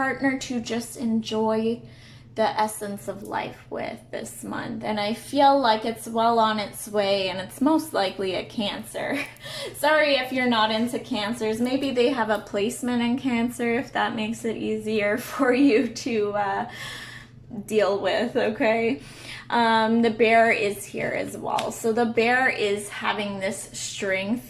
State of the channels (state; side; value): identical; both; correlation 1.00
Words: to just enjoy the essence of life with this month. And I feel like it's well on its way, and it's most likely a Cancer. Sorry if you're not into Cancers. Maybe they have a placement in Cancer, if that makes it easier for you to deal with, okay? The bear is here as well. So the bear is having this